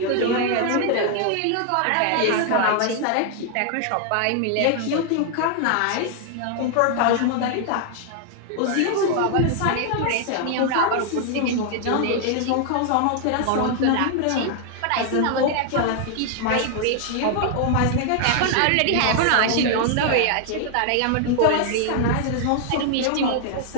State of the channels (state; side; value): different; both; correlation 0.00